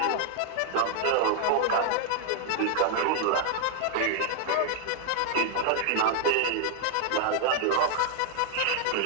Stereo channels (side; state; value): both; different; correlation 0.00